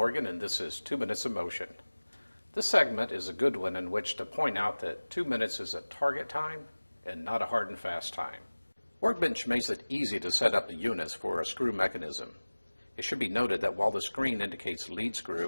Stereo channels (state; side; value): inverted; both; correlation -1.00